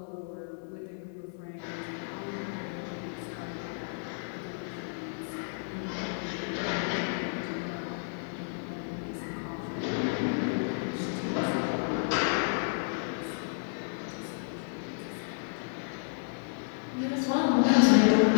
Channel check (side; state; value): right; silent; 57 dB below the other